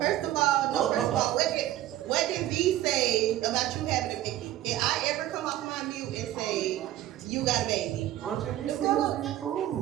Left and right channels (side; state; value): left; quieter; 13.6 dB